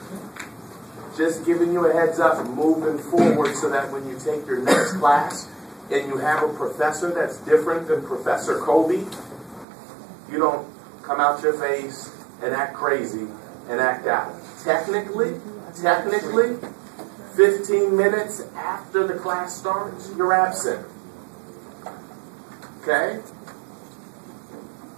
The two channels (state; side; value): drops out; left; at 9.7 s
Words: Just giving you a heads up, moving forward so that when you take your next class and you have a professor that's different than Professor Kobe, you don't come out your face and act crazy and act out. Technically, 15 minutes after the class starts, you're absent. Okay?